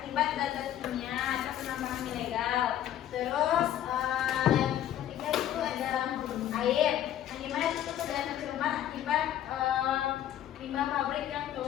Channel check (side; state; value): right; quieter; 11.5 dB